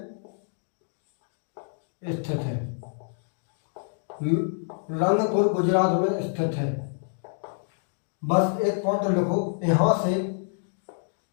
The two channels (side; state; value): right; silent; digital silence